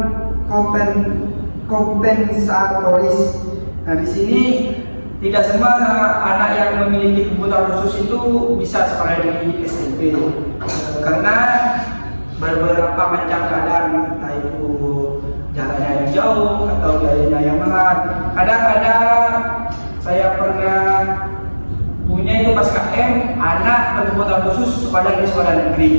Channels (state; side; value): inverted; both; correlation -1.00